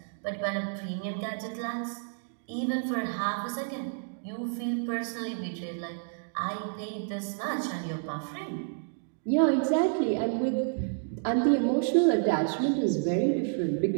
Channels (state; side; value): silent; left; digital silence